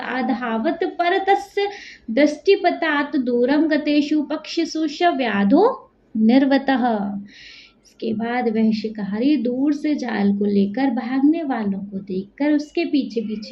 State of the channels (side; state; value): both; identical; correlation 1.00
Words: परतस्य दृष्टिपतात् दूरं गतेषु पक्षिषु स व्याधो निर्वतः। इसके बाद वह शिकारी दूर से जाल को लेकर भागने वालों को देखकर उसके पीछे